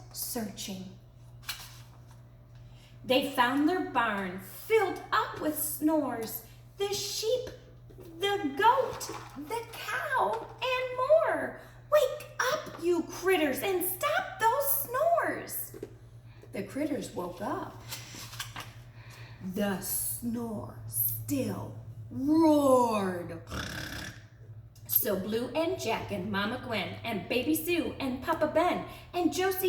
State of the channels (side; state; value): both; identical; correlation 1.00